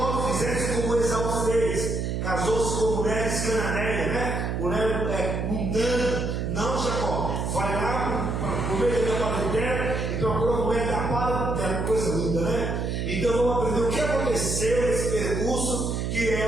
fizesse como Esaú fez, casou-se com mulheres cananeias, né? Mulher mundana. Não, Jacó, vai lá para o meio da parentela e procura a mulher da parentela, coisa linda, né? Então vamos aprender o que aconteceu nesse percurso, que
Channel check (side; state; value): right; noise; hum, 1 dB below the sound